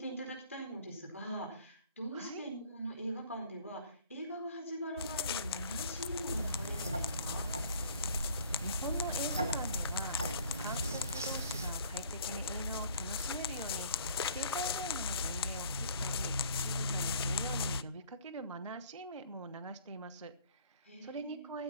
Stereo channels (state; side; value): inverted; both; correlation -0.53